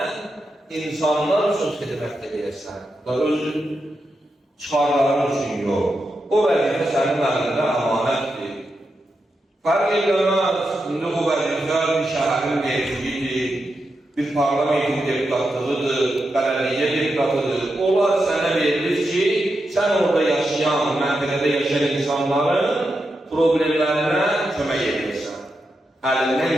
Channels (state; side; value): normal; both; correlation 0.87